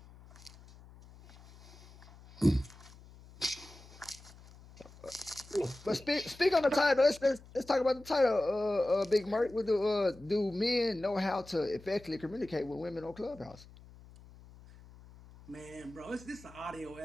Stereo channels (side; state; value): left; noise; hum, 21 dB below the sound